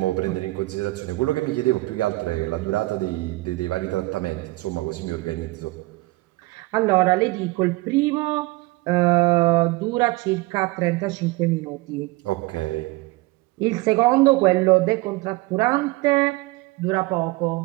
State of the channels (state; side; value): quieter; left; 21.8 dB